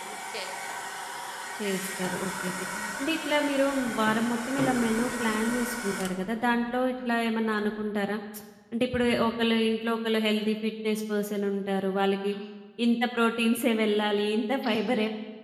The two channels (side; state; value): both; identical; correlation 1.00